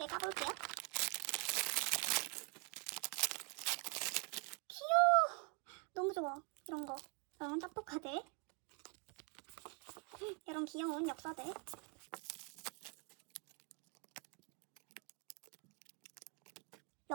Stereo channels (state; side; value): quieter; left; 34.9 dB